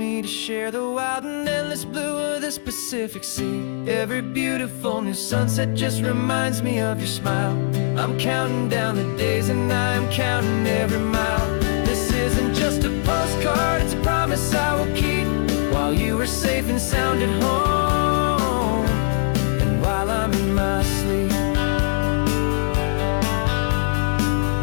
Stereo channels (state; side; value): silent; right; digital silence